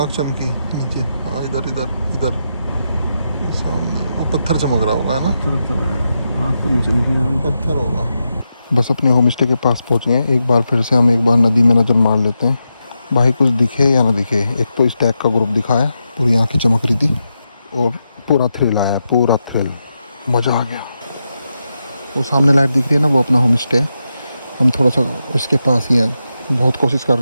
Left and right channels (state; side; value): inverted; both; correlation -0.87